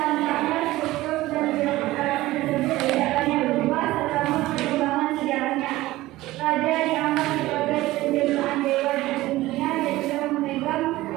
struktur dan birokrasi tersebut tidak banyak berubah selama perkembangan sejarahnya. Raja dianggap sebagai penjelmaan dewa di dunia dan juga memegang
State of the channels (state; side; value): quieter; left; 17.5 dB